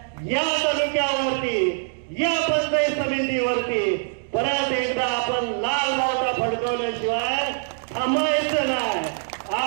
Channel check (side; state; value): left; silent; digital silence